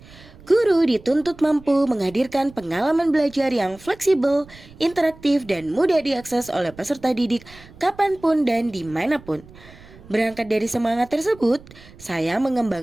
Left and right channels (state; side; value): noise; right; rumble, 22 dB below the sound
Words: Guru dituntut mampu menghadirkan pengalaman belajar yang fleksibel, interaktif, dan mudah diakses oleh peserta didik kapanpun dan dimanapun. Berangkat dari semangat tersebut, saya